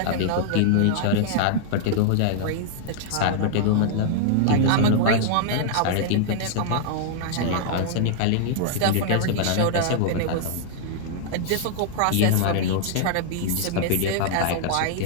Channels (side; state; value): both; different; correlation -0.01